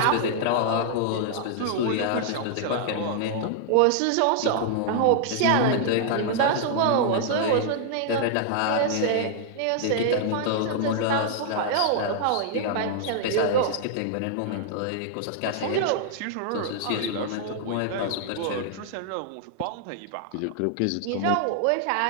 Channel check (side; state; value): both; different; correlation -0.01